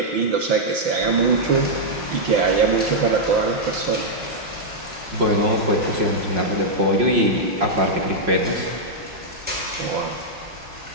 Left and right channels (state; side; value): late; left; 5.8 ms